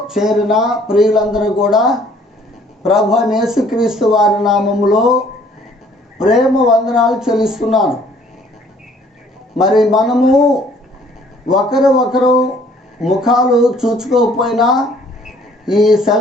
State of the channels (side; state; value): both; normal; correlation 0.59